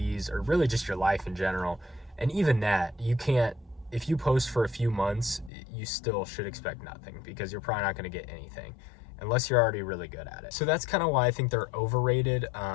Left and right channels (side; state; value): right; drops out; at 5.5 s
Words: or really just your life in general. And even that, you can't, if you post for a few months, you still should expect nothing, because you're probably not going to get anything unless you're already really good at it. So that's kind of why I think they're overrated.